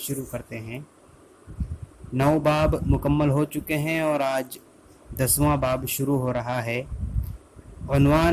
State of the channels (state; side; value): identical; both; correlation 1.00